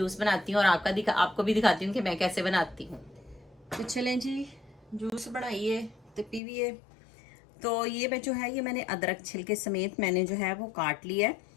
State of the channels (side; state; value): right; drops out; at 6.4 s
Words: बनाती हूँ और आपको भी दिखाती हूँ कि मैं कैसे बनाती हूँ। तो चलें जी, जूस बनाइए तो पीविए। तो ये मैं जो है ये मैंने अदरक छिलके समेत मैंने जो है वो काट लिया है